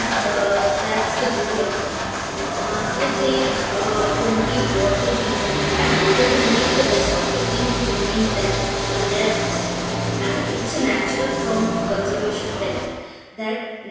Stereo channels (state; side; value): identical; both; correlation 1.00